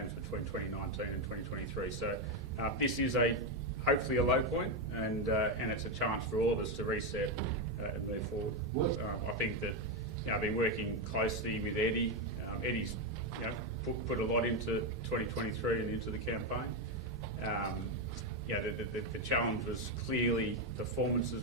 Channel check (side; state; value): both; normal; correlation 0.07